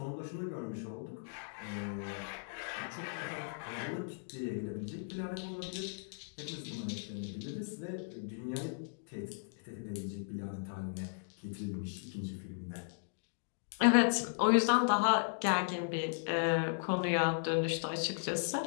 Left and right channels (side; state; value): right; silent; digital silence